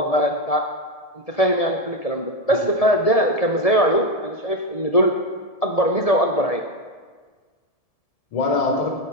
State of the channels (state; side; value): late; right; 1.7 ms